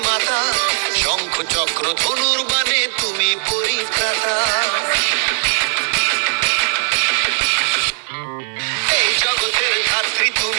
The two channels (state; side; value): silent; left; 57 dB below the other